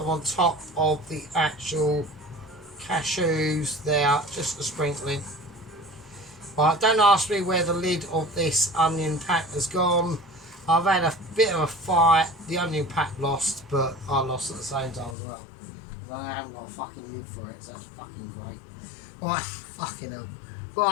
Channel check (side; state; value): right; drops out; at 15.2 s